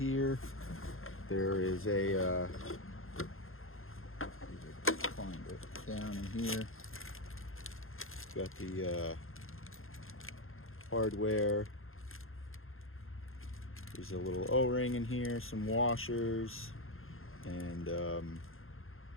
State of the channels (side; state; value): right; late; 0.60 ms